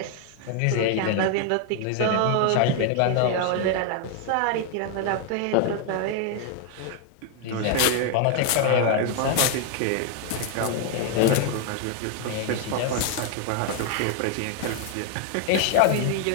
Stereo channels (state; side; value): different; both; correlation 0.00